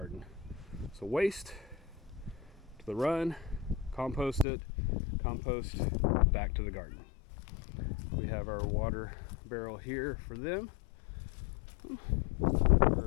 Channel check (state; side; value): drops out; right; at 4.5 s